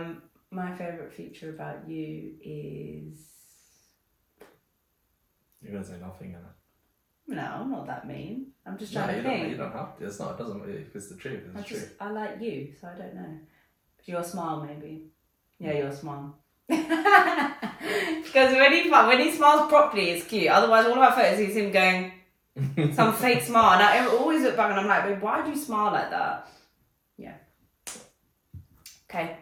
My favorite feature about you is You're gonna say nothing, innit? no, I'm not that mean. I'm just No, trying to think. you don't have to. It's not. It doesn't. If it's the truth, it's the truth. I like you, so I don't know. Your smile, maybe. Yeah, your smile. Because when he smiles properly, it's cute. Otherwise, all of our photos is him going some fake smile. And I always look back and I'm like, babe, why do you smile like that? Yeah. Okay,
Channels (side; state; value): both; identical; correlation 1.00